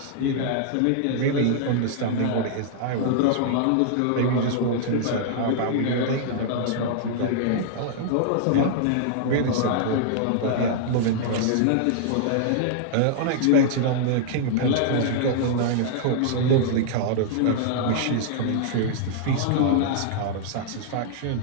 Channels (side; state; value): both; different; correlation -0.01